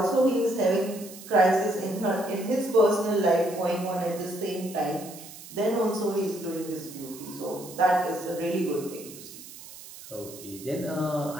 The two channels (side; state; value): right; noise; hiss, 16 dB below the sound